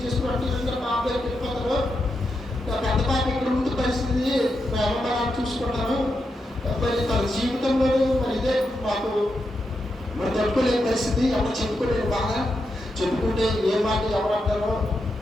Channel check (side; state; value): both; normal; correlation 0.85